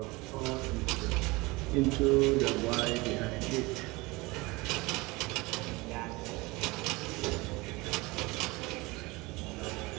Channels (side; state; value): left; quieter; 23.3 dB